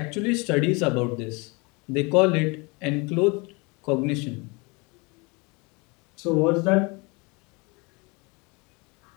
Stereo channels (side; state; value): right; quieter; 28.5 dB